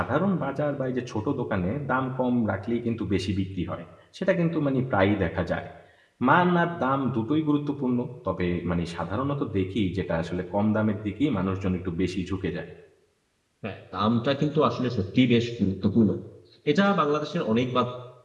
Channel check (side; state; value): both; identical; correlation 1.00